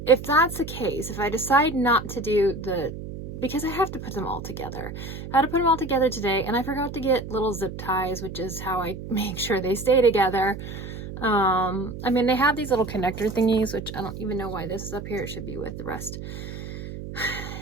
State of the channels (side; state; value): right; noise; hum, 9 dB below the sound